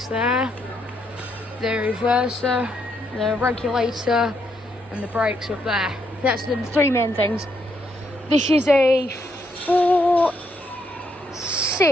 there, the reverser, the regulator, and the brakes up there. That's the three main things. This is a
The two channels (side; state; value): both; normal; correlation 0.76